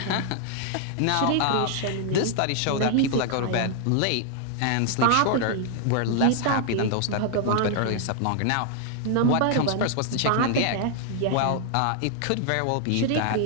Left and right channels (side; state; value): both; different; correlation 0.00